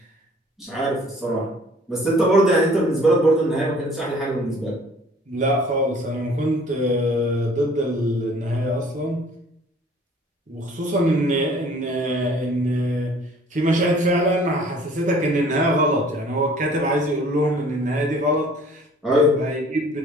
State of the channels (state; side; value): normal; both; correlation 0.53